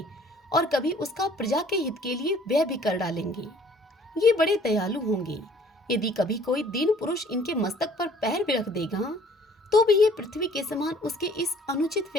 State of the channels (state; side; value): normal; both; correlation 0.56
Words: और कभी उसका प्रजा के हित के लिए व्यय भी कर डालेंगे। ये बड़े दयालु होंगे। यदि कभी कोई दीन पुरुष इनके मस्तक पर पैर भी रख देगा तो भी ये पृथ्वी के समान उसके इस अनुचित